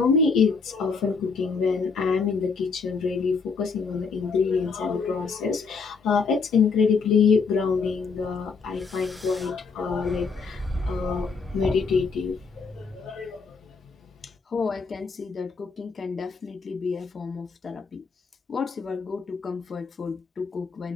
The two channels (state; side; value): quieter; right; 5.0 dB